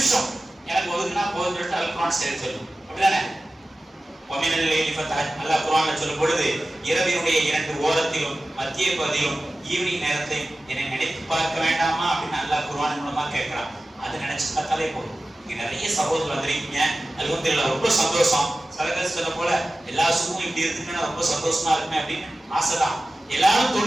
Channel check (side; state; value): both; normal; correlation 0.96